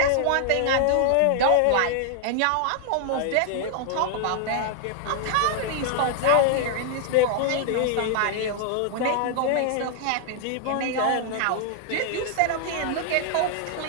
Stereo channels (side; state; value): both; different; correlation 0.00